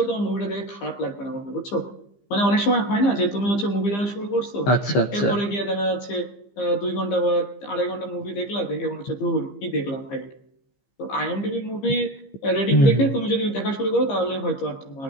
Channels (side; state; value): right; late; 15 ms